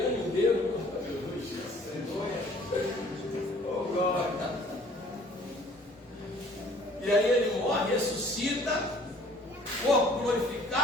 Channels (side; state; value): both; normal; correlation 0.54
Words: o dedo, oh glória. E aí ele morre, ressuscita, corpo